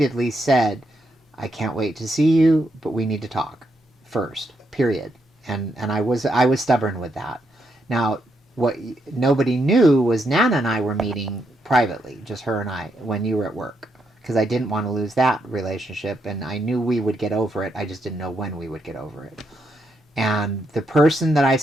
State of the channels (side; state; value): both; normal; correlation 0.79